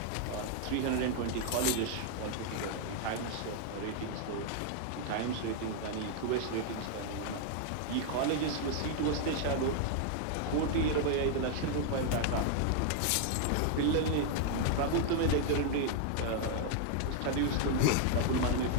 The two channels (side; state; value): both; different; correlation 0.00